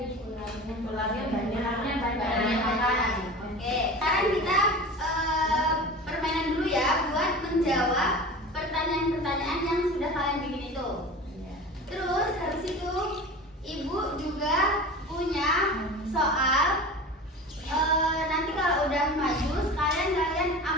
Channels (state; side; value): normal; both; correlation 0.34